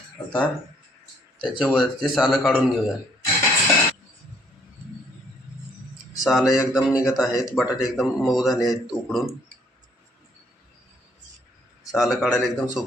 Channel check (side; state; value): both; normal; correlation 0.65